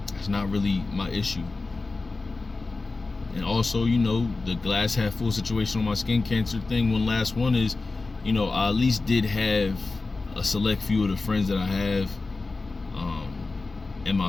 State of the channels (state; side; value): quieter; right; 3.7 dB